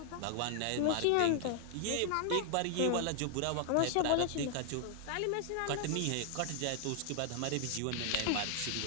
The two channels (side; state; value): both; different; correlation 0.00